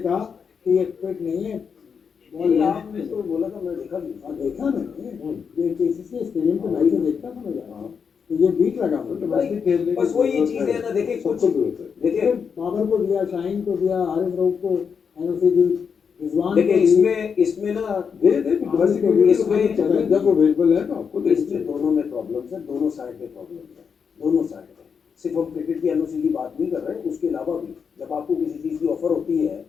कहा कि ये फिट नहीं है। आपने तो बोला था, मैं देखा भी देखा मैंने, ये केसीसी स्टेडियम पे मैच देखता था मैं जाना, तो ये बीट लगा मुझे। बस वो ये चीज है ना, देखिए कुछ देखिए बाबर को दिया, शाहीन को दिया, आरिफ रऊफ को एनओसी दी, रिजवान देखिए इसमें ना दे इसमें जब अवेलेबल है तो आपको इसमें दोनों दोनों में प्रॉब्लम्स है, दोनों साइड पे प्रॉब्लम्स है, दोनों साइड पे। सिर्फ हम क्रिकेट की एनओसी की बात नहीं कर रहे, उसके अलावा भी जब आपको किसी चीज़ की ऑफर होती है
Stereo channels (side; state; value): right; quieter; 6.4 dB